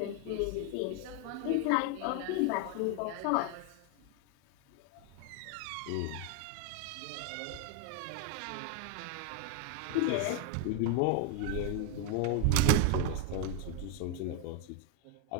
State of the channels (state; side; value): different; both; correlation 0.01